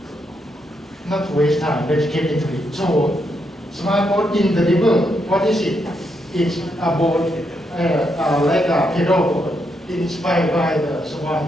Not to waste time, let's get into it. So, Smart Boat in the River, what is it? It's a boat like a pedal boat inspired by the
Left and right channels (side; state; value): both; normal; correlation 0.79